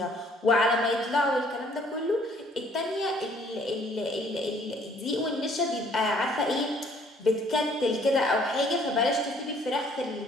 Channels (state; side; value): normal; both; correlation 0.60